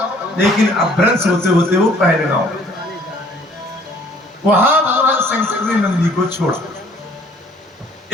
लेकिन अभ्रंश होते होते वो पहलगांव। वहां भगवान शंकर ने नंदी को छोड़ा।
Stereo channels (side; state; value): both; normal; correlation 0.57